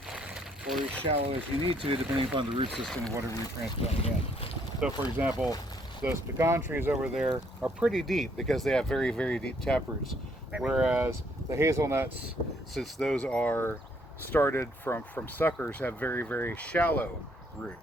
or as shallow as you need to, depending upon the root system of whatever you're transplanting in. So, for example, those pecan trees over there are pretty deep because they have very, very deep taproots. Whereas the hazelnuts, since those are started from suckers, have very, very shallow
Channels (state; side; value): normal; both; correlation 0.68